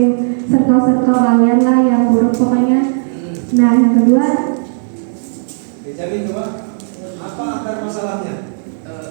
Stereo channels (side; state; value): left; silent; digital silence